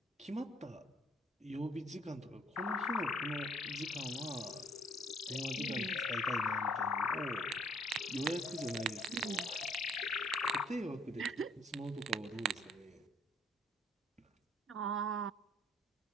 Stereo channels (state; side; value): normal; both; correlation 0.61